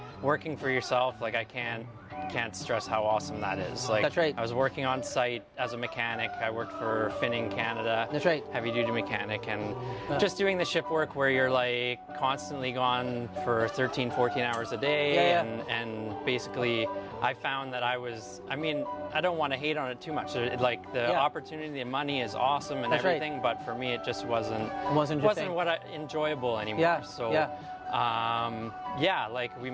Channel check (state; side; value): identical; both; correlation 1.00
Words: working for yourself. Like, I can't stress how awesome that is. Like, That's right. I was working on site as a mechanic. I worked for Finning Canada. That's right. Heavy duty mechanic, and just doing the ship work where you're like constantly gone for 13, 14 hours a day. And basically I found that I don't want to hate on it too much. Like the opportunity, the money is awesome and That's everything, right. but for me it just wasn't enjoyable anymore. Like we